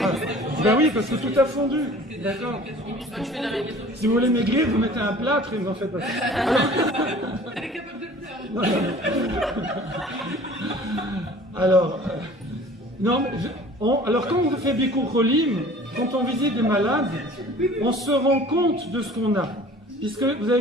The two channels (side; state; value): both; normal; correlation 0.47